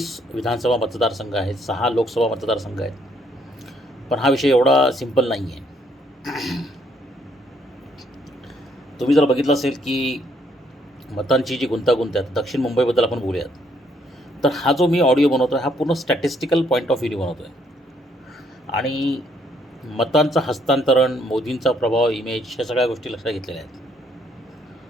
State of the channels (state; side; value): normal; both; correlation 0.69